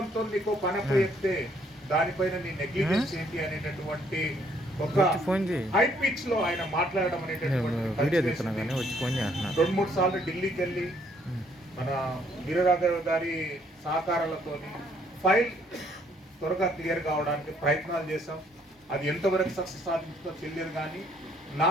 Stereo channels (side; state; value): both; normal; correlation 0.66